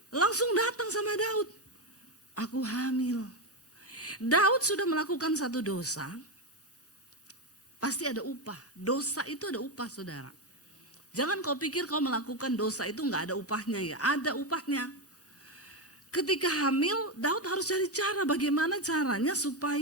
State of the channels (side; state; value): both; normal; correlation 0.10